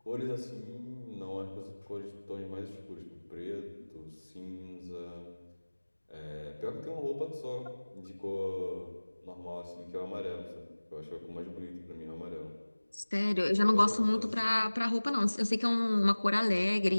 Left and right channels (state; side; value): inverted; both; correlation -1.00